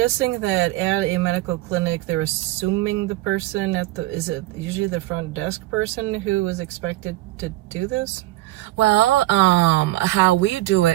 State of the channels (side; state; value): left; quieter; 17.6 dB